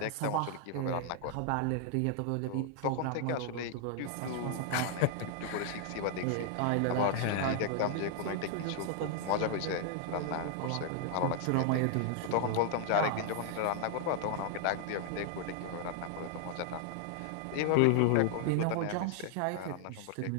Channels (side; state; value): both; different; correlation 0.00